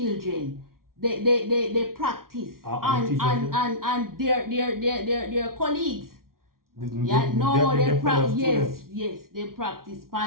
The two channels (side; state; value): left; late; 0.93 ms